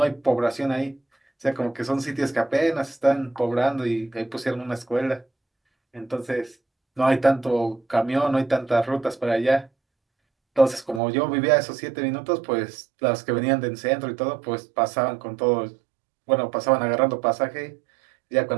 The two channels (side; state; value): left; drops out; at 11.0 s